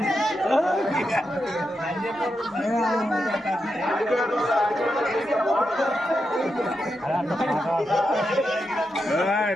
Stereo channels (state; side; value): normal; both; correlation 0.86